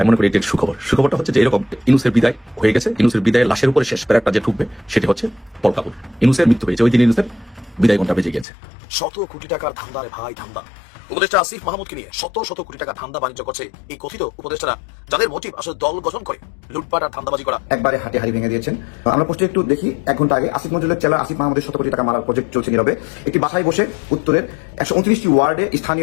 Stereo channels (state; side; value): drops out; right; at 8.5 s